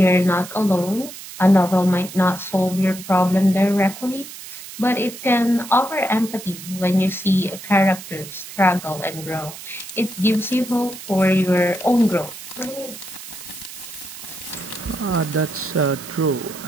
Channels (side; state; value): right; noise; hiss, 13 dB below the sound